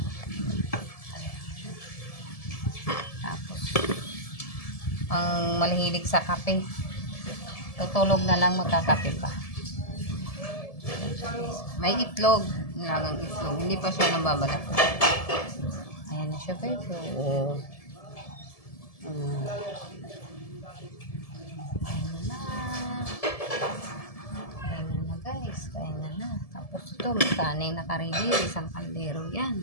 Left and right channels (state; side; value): late; right; 1.7 ms